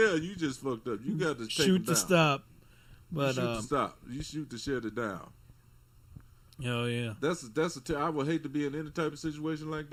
you just fucked up. You got to take shoot them to down. stop. But you shoot to stop. You shoot to shut it down. Oh yeah. I would hate to be in any type of situation like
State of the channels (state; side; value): identical; both; correlation 1.00